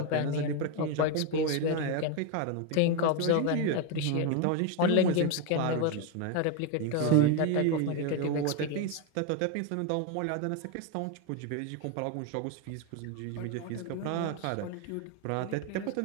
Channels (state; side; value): different; both; correlation 0.02